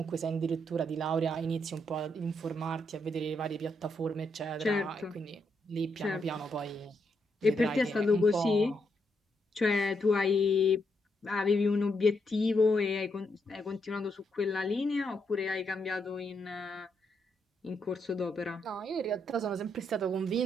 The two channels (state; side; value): normal; both; correlation 0.79